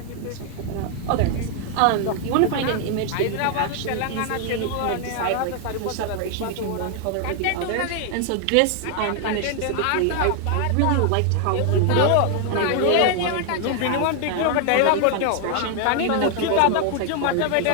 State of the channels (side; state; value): both; different; correlation 0.00